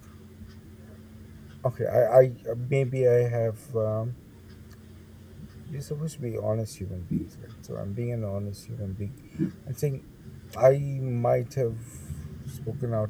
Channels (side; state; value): both; identical; correlation 1.00